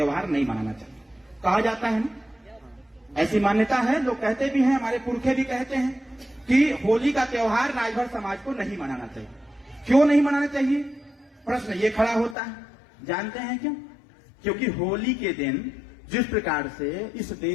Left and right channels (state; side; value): drops out; right; at 12.4 s